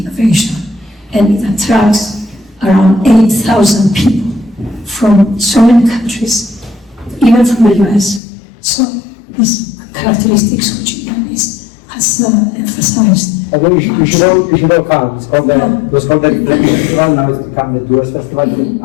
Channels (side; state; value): right; drops out; at 8.2 s